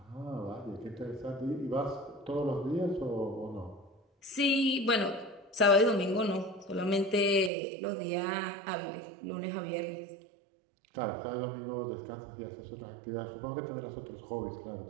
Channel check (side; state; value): left; drops out; at 7.5 s